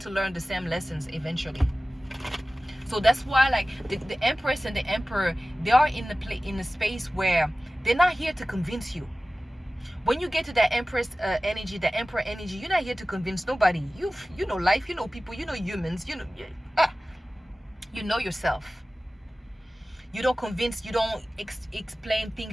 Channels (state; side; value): normal; both; correlation 0.97